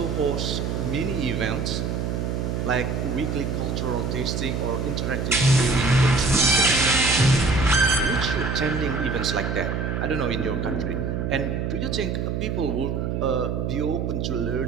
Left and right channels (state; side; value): noise; right; hum, 1 dB below the sound